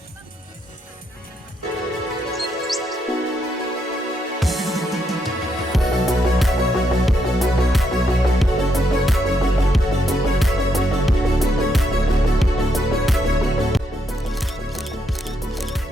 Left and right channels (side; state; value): both; normal; correlation 0.78